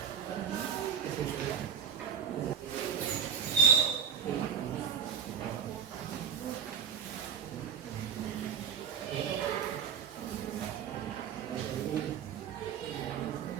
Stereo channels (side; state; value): left; quieter; 7.3 dB